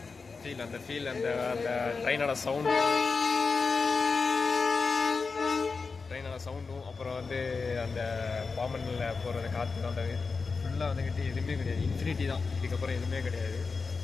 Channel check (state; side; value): quieter; right; 4.6 dB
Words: ஃபீல், அந்த ட்ரெயினோட சவுண்டும் அப்புறம் வந்து அந்த பாமனில் போகிறது காற்று அந்த ஃபுல்லாக வந்துக்கிட்டு எதுவுமே கிடையாது. இன்ஃபினிட்டி தான், இதுக்கப்புறம் எதுவுமே கிடையாது.